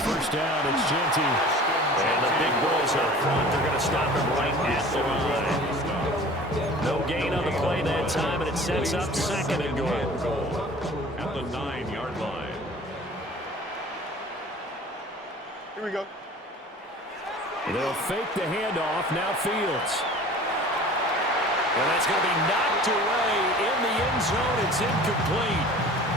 down, it's Genty. And the big boys up front, they're going to stop him right at the line. No gain on the play that time, and it sets up 2nd and goal. At the 9-yard line. Here we go. They'll fake the handoff. Now Fields. And that's going to be knocked away in the end zone. It's incomplete.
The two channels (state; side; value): normal; both; correlation 0.44